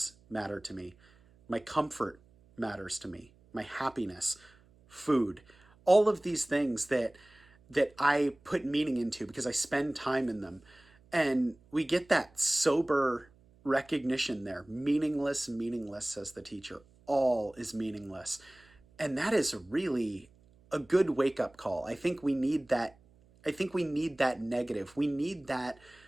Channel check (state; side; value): noise; right; hum, 30 dB below the sound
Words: matter to me. My comfort matters to me. My happiness, food, all of these things that I put meaning into because I spend time in them. And we get that sober recognition there. Meaningless, meaningless, says the teacher. All is meaningless. And that is really a good wake-up call. I think we need that. I think we need that negative. We need that